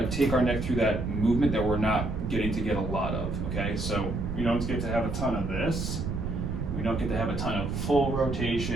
take our neck through that movement that we're not getting to get a lot of, okay? So we don't get to have a ton of this. We don't get to have a ton of full rotation,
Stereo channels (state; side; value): noise; right; rumble, 3 dB below the sound